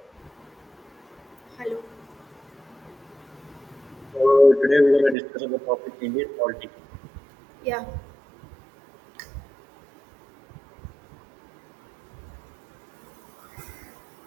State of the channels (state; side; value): drops out; left; at 5.2 s